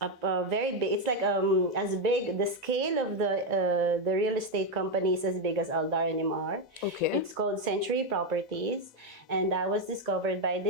very big. It's like as big. The scale of the real estate company is as big as Aldar and Imar. Okay. It's called Century Properties, and I was discovered by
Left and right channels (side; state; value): both; normal; correlation 0.06